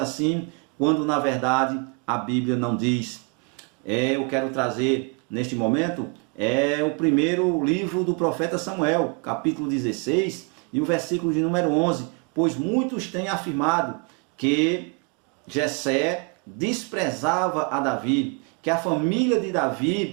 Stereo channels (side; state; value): left; quieter; 34.0 dB